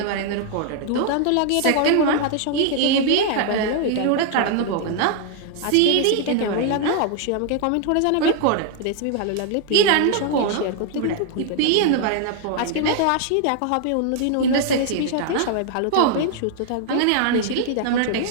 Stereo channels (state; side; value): different; both; correlation 0.00